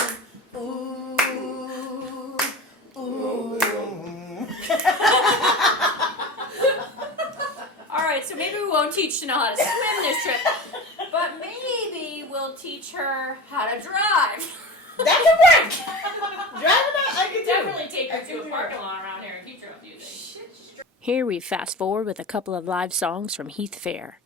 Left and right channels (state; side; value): normal; both; correlation 0.31